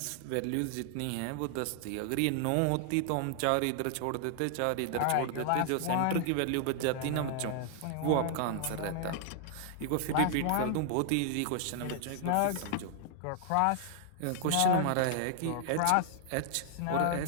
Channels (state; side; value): different; both; correlation 0.00